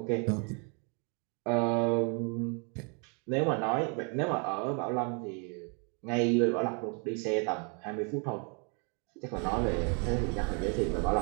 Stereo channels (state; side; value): quieter; left; 37.0 dB